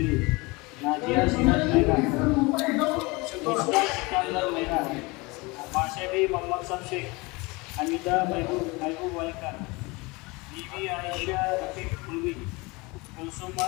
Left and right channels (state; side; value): quieter; right; 25.1 dB